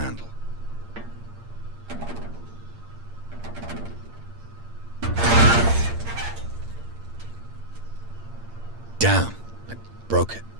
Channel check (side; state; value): left; late; 8.7 ms